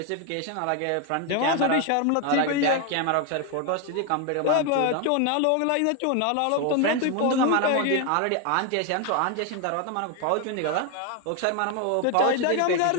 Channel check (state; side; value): different; both; correlation 0.01